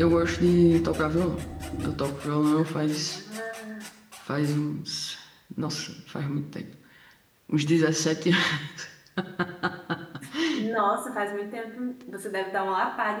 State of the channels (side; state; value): both; identical; correlation 1.00